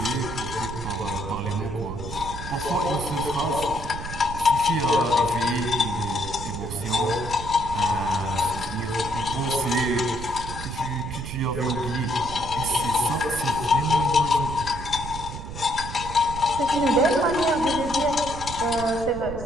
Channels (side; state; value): right; noise; rumble, 9 dB below the sound